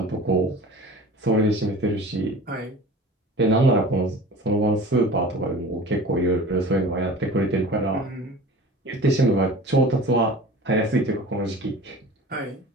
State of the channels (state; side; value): normal; both; correlation 0.39